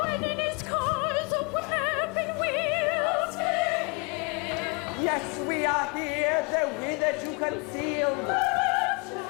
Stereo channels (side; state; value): right; quieter; 31.1 dB